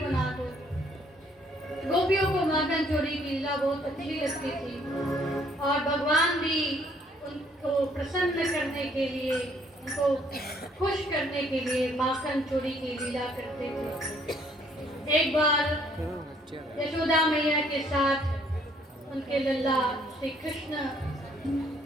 दो। गोपियों को माखन चोरी की लीला बहुत अच्छी लगती थी और भगवान भी उनको प्रसन्न करने के लिए, उनको खुश करने के लिए माखन चोरी की लीला करते थे। एक बार यशोदा मैया के साथ उनके लल्ला श्री कृष्ण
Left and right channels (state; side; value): normal; both; correlation 0.64